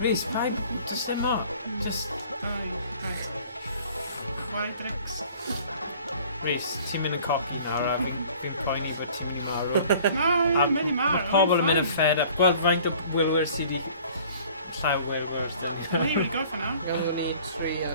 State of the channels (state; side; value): inverted; both; correlation -0.51